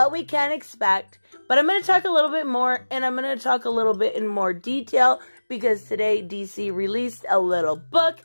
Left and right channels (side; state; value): both; inverted; correlation -1.00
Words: we can expect, but I'm going to talk a little bit more, and I'm going to talk a little bit in more detail because today DC released a little book.